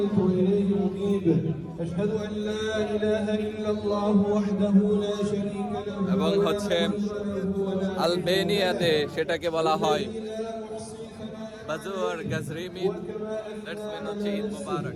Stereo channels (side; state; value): both; identical; correlation 1.00